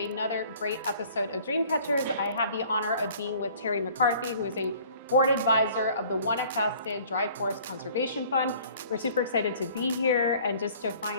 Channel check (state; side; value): inverted; both; correlation -0.52